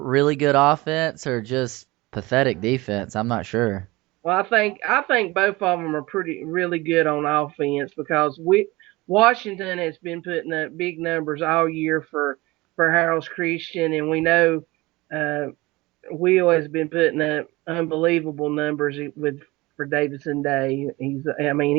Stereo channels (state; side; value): quieter; left; 21.5 dB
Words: good offense or just pathetic defense. I'm not sure. Well, I think both of them are pretty really good on offense because Washington has been putting up big numbers all year for Harold's Christian, and we know uh, Will has been putting up unbelievable numbers with for Davidson Day.